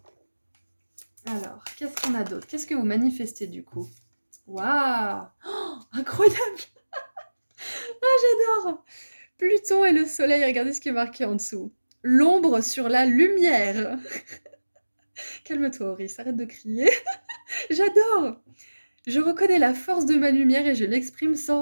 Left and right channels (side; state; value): both; inverted; correlation -1.00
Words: Alors, qu'est-ce qu'on a d'autre? Qu'est-ce que vous manifestez du coup? Waouh! Oh, incroyable! J'adore! Pluton et le soleil, regardez ce qui est marqué en dessous. L'ombre sur la lumière. Calme-toi, Auris, arrête de crier. J'adore! Je reconnais la force de ma lumière et je l'exprime sans